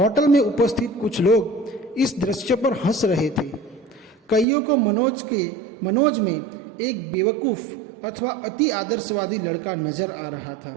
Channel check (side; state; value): left; drops out; at 4.5 s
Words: में उपस्थित कुछ लोग इस दृश्य पर हंस रहे थे। कईयों को मनोज में एक बेवकूफ़ अथवा अति आदर्शवादी लड़का नजर आ रहा